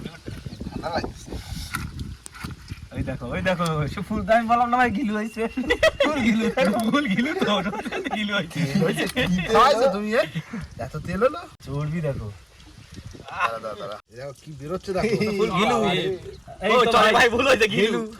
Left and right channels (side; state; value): both; identical; correlation 1.00